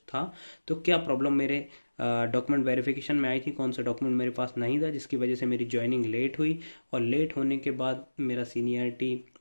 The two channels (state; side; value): inverted; both; correlation -1.00